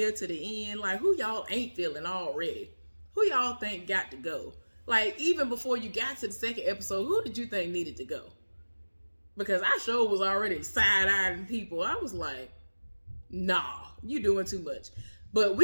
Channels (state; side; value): inverted; both; correlation -1.00